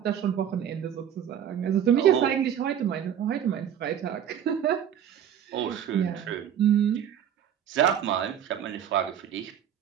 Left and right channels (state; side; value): quieter; left; 9.5 dB